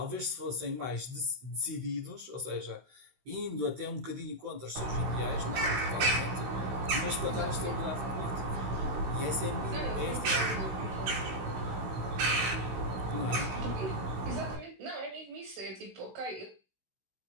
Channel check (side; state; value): left; late; 16 ms